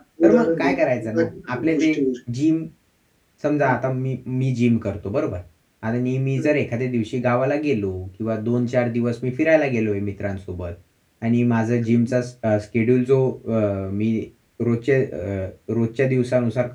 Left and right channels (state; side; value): identical; both; correlation 1.00